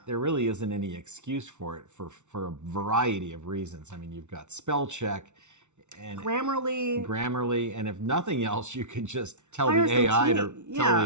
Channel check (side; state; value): left; late; 0.83 ms